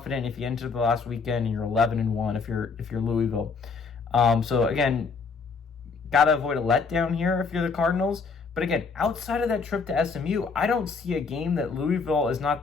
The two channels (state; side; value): quieter; right; 4.9 dB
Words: if you enter the last weekend and you're 11-1 if you're Louisville. So again, gotta avoid a letdown here if you're the Cardinals. But again, outside of that trip to SMU, I don't see a game that Louisville is